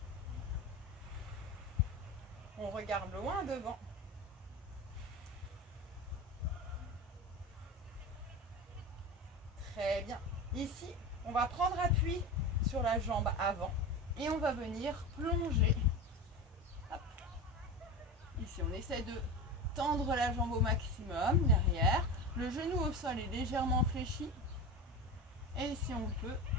On regarde loin devant. Très bien. Ici, on va prendre appui sur la jambe avant et on va venir plonger. Hop. Ici, on essaie de tendre la jambe au maximum derrière. Le genou au sol est légèrement fléchi. Et si on peut,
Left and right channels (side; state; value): both; normal; correlation 0.27